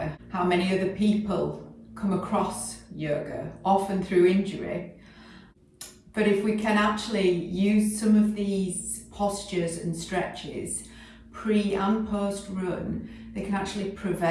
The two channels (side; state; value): both; identical; correlation 1.00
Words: How many other people come across yoga, often through injury. But if we can actually use some of these postures and stretches pre and post run, they can actually